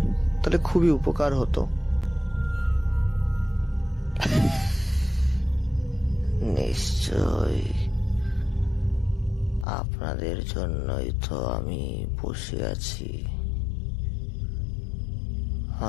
তাহলে খুবই উপকার হতো। নিশ্চয়, আপনাদের জন্যই তো আমি বসে আছি।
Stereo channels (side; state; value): right; drops out; at 9.7 s